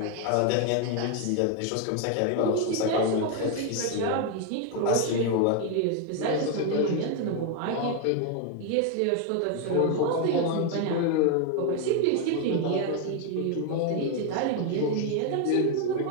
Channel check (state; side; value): different; both; correlation 0.01